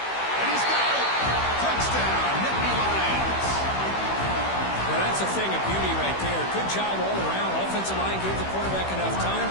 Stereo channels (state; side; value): late; right; 16 ms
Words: he's got it. Touchdown, Nittany Lions. Well, that's a thing of beauty right there. Good job all around. Offensive line gave the quarterback enough time.